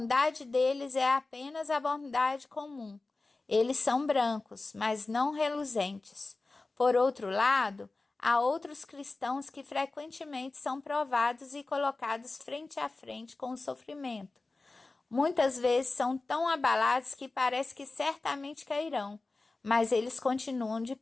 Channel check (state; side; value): quieter; right; 3.4 dB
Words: deles é apenas a bondade comum. Eles são brancos, mas não reluzentes. Por outro lado, há outros cristãos que frequentemente são provados e colocados frente a frente com o sofrimento. Muitas vezes são tão abalados que parece que certamente cairão, mas eles continuam de